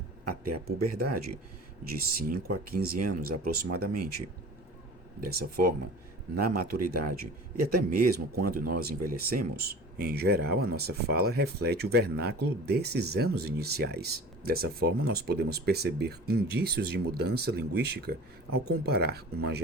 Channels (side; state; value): both; normal; correlation 0.40